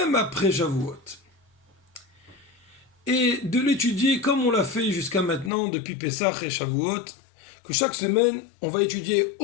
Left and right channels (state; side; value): drops out; right; at 5.5 s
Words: après Shavuot. Et de l'étudier comme on l'a fait jusqu'à maintenant depuis Pessah et Shavuot, que chaque semaine, on va étudier